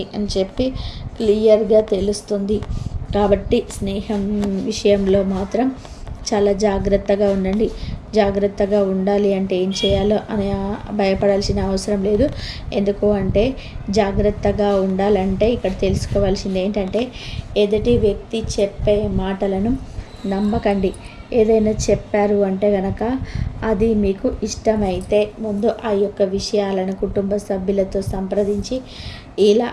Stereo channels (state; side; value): identical; both; correlation 1.00